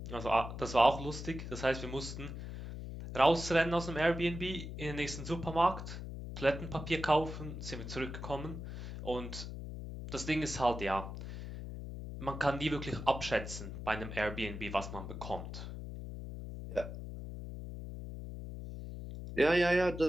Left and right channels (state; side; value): noise; left; hum, 8 dB below the sound